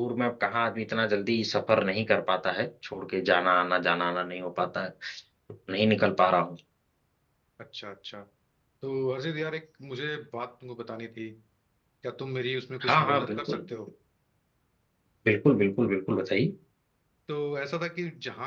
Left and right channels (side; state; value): both; identical; correlation 1.00